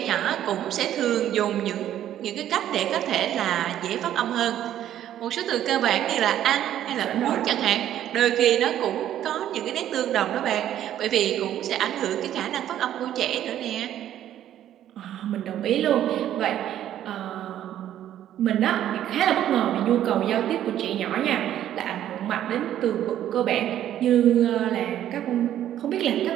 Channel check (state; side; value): quieter; left; 11.5 dB